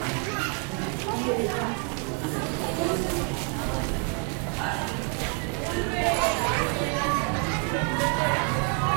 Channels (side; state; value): left; quieter; 32.2 dB